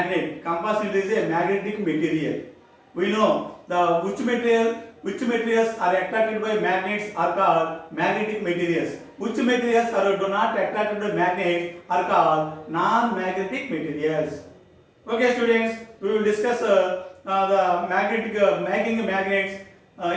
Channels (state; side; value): identical; both; correlation 1.00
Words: Compass needle is a magnetic material. We know which materials are attracted by magnets are called magnetic materials. Which materials are do not attracted by magnets are called non-magnetic materials. Okay, students, we will discuss the making magnets